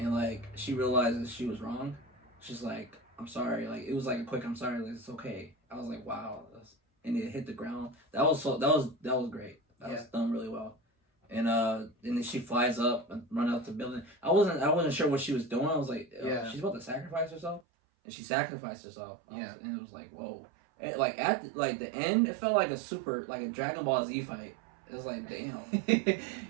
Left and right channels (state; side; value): drops out; left; at 17.6 s